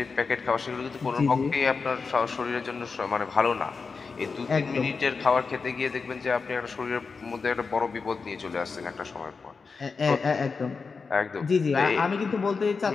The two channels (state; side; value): quieter; right; 4.8 dB